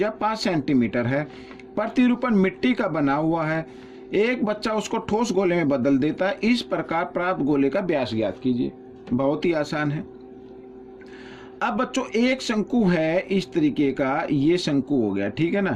5 सेंटीमीटर है, प्रतिरूपण मिट्टी का बना हुआ है। एक बच्चा उसको ठोस गोले में बदल देता है। इस प्रकार प्राप्त गोले का व्यास ज्ञात कीजिए। बहुत ही आसान है। अब बच्चों एक शंकु है इस तरीके का, ये शंकु हो गया, ठीक है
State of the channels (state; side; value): identical; both; correlation 1.00